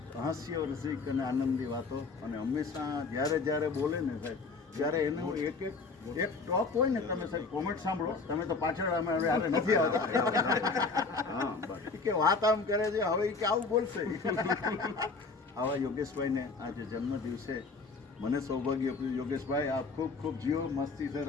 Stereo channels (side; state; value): right; quieter; 4.2 dB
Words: હાસ્ય રસિક અને આનંદી વાતો. અને હંમેશા જ્યારે બોલે ને સાહેબ ત્યારે એનું એક ટોપ હોય ને, તમે સાહેબ કોમેન્ટ સાંભળો, તમે તો પાછળ અમે હવે નથી આવતા કે વાત આમ કરે છે હવે કે આવું બોલશે. આવા યોગેશભાઈને આજે જન્મ દિવસે મને સૌભાગ્ય આપ્યું. યોગેશભાઈ આપ ખૂબ ખૂબ જીવો, મસ્તી से